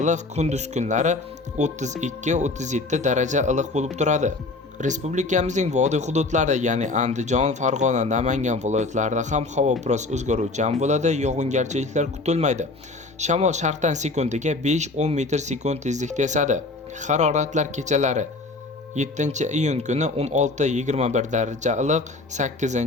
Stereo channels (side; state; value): right; quieter; 3.3 dB